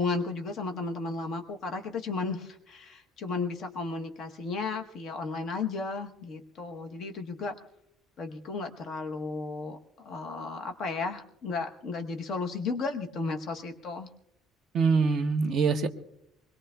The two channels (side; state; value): both; normal; correlation 0.59